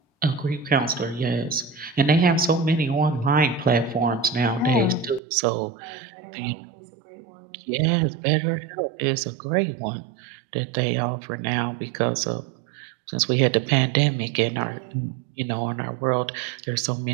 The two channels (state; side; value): drops out; left; at 5.2 s